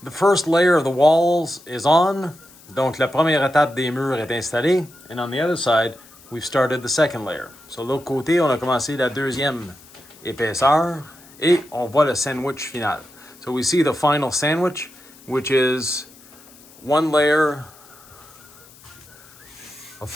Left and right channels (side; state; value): left; noise; hiss, 24 dB below the sound